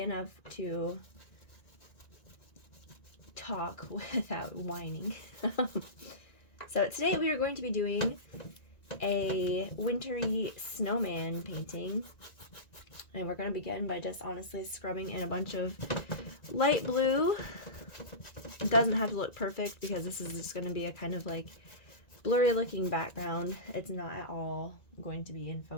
to talk without whining. So today we are going to be doing a wintry snowman painting, and we're going to begin by just honestly scrubbing in a bunch of light blue. It doesn't have to look perfect because this is just going to be a kind of like blurry looking background. It's not at all going to be in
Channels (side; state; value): right; late; 1.9 ms